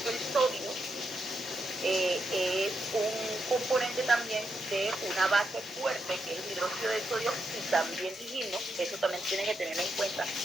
que el sodio es un componente también de una base fuerte, que es el hidróxido de sodio, y también dijimos, eso también tienen que tener en cuenta,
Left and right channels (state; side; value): normal; both; correlation 0.83